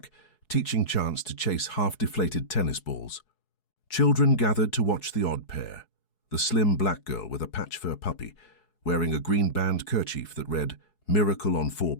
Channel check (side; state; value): right; late; 4.7 ms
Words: teaching Chance to chase half-deflated tennis balls. Children gathered to watch the odd pair, the slim black girl with a patch-fur puppy, wearing a green band kerchief that read, "Miracle on 4